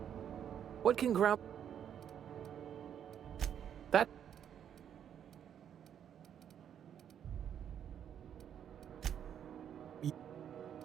What can That...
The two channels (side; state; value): left; quieter; 9.1 dB